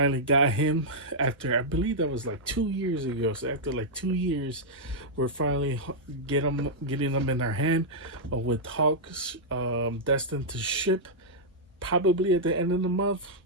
got him after, I believe that was like 2 years ago. So after like 2 years, we're finally getting them in our hand, with Hawks destined to ship probably at the end of the month.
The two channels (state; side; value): normal; both; correlation -0.09